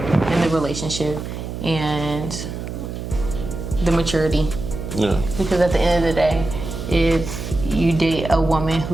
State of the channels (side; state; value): right; noise; hum, 7 dB below the sound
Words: the relationship and the maturity. Yeah. Because at the end of the day, if you date a woman